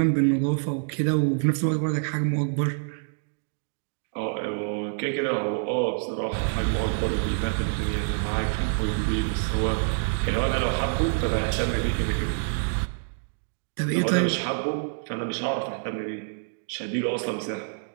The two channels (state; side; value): silent; left; digital silence